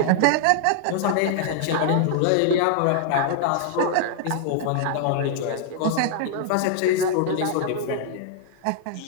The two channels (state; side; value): different; both; correlation 0.00